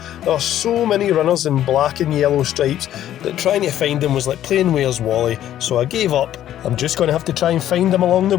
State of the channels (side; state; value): right; quieter; 11.9 dB